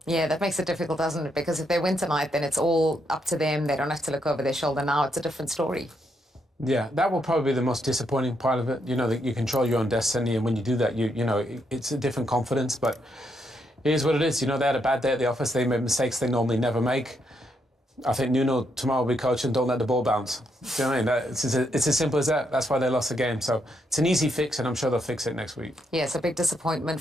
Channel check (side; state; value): both; normal; correlation 0.78